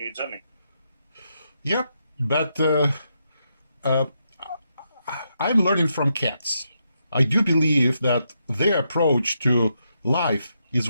journey. Yep, but I'm learning from cats. I do believe that their approach to life is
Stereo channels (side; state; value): both; inverted; correlation -0.81